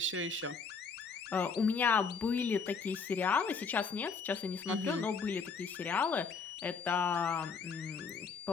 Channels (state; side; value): quieter; right; 5.3 dB